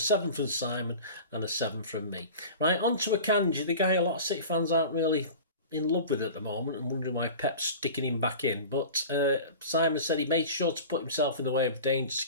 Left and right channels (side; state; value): both; inverted; correlation -0.36